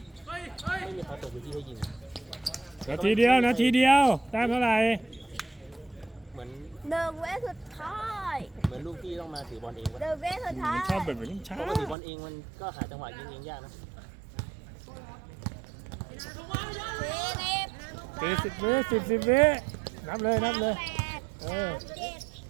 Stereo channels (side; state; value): left; drops out; at 12.0 s